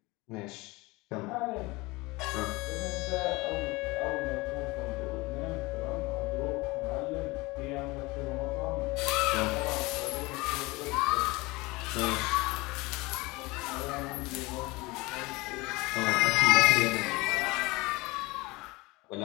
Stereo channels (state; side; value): quieter; right; 22.9 dB